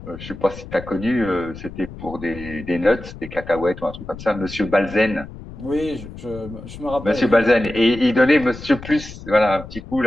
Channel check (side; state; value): left; noise; rumble, 14 dB below the sound